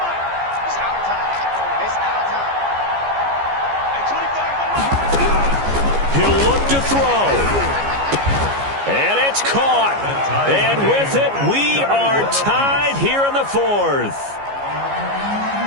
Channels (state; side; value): late; left; 15 ms